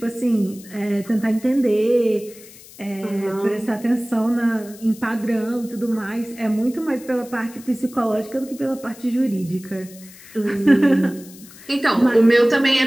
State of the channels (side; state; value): left; noise; hiss, 20 dB below the sound